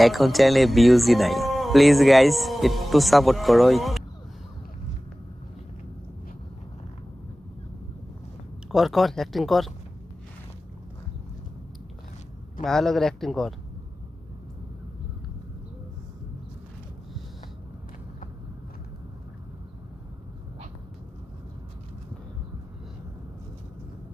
এখন চ্যানেলে ভিউজই নাই। প্লিজ গাইস একটু সাপোর্ট করো। কর কর অ্যাক্টিং কর, ভালো করে অ্যাক্টিং কর।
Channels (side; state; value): both; normal; correlation 0.96